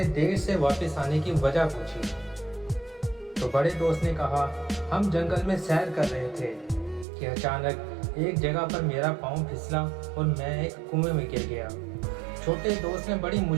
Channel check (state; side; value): drops out; left; at 7.1 s